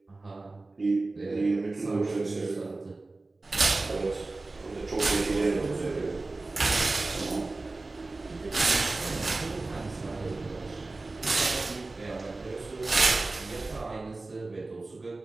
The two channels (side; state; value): left; quieter; 3.3 dB